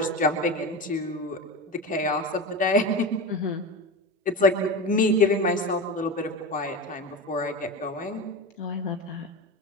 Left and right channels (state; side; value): normal; both; correlation 0.24